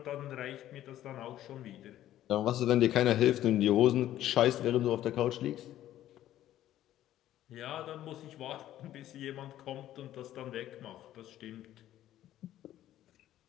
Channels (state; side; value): quieter; right; 12.9 dB